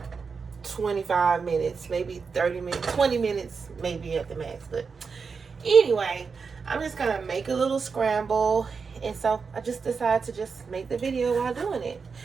25 minutes, maybe 30 minutes, 20 minutes, maybe at the max. But anyway, I'm just gonna make a little scramble, and so I just decided to just make the video while doing it.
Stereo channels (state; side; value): quieter; left; 5.3 dB